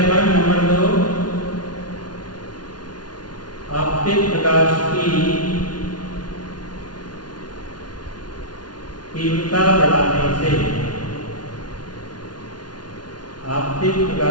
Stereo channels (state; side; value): late; right; 0.70 ms